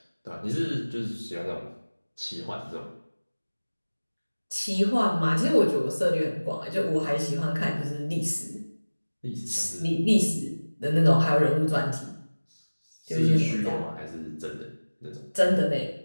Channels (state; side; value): inverted; both; correlation -1.00